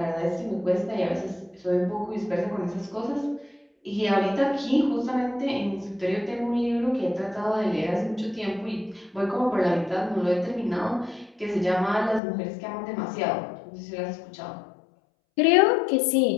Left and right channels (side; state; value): right; drops out; at 12.2 s